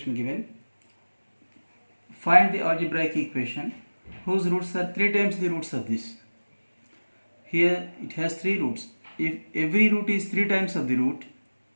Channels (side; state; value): both; inverted; correlation -1.00